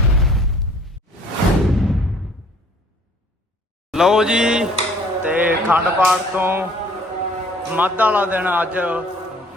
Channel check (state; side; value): normal; both; correlation 0.56